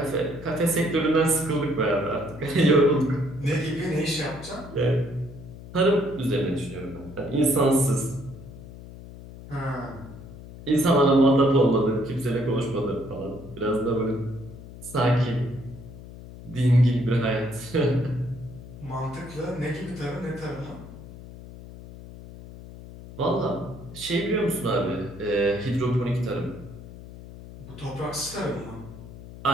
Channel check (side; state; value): left; noise; hum, 15 dB below the sound